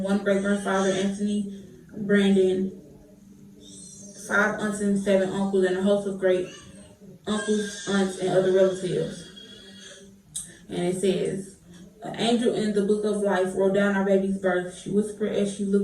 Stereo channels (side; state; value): both; identical; correlation 1.00